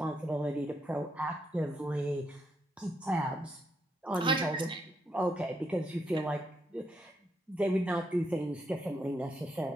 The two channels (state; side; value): normal; both; correlation 0.78